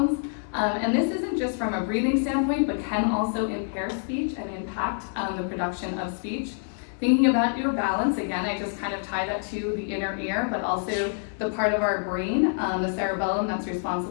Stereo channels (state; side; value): silent; right; 60 dB below the other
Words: and this isn't just from a breathing standpoint, but can also impair speech and impact the production of speech. Thinking about your balance, again, I just kind of tie that to the inner ear, but also the part of our brain, the cerebellum that's